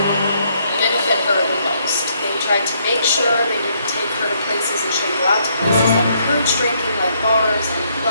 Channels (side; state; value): both; inverted; correlation -0.71